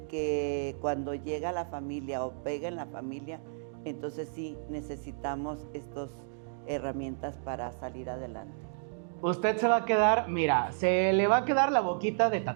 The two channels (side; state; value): left; silent; digital silence